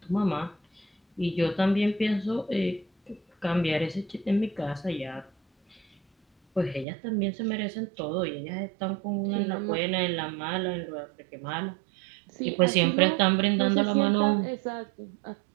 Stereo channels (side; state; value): left; drops out; at 6.9 s